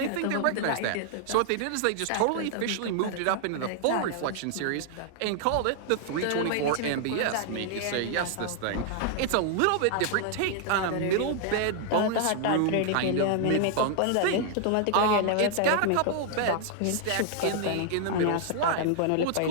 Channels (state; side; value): different; both; correlation 0.00